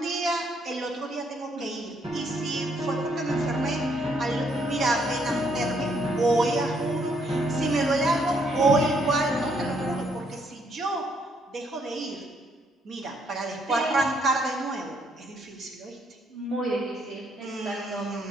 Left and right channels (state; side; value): normal; both; correlation 0.71